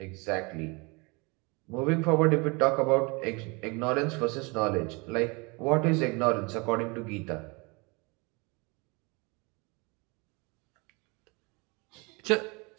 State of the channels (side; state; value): left; quieter; 28.2 dB